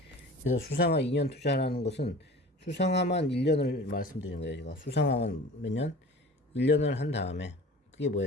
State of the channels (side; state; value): both; normal; correlation 0.41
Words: 그래서 수상화 2년 투자하는 것은 수상화만 1년을 말씀드리는 거예요. 제가 수상화만 몇 년? 1년을 한 다음에 그게